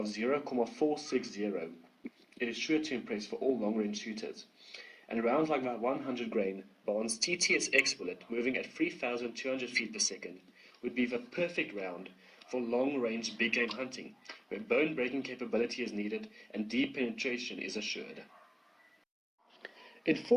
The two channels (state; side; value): identical; both; correlation 1.00